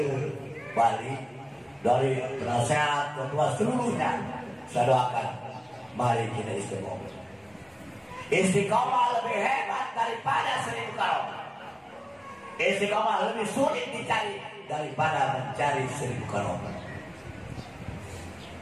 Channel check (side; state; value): both; identical; correlation 1.00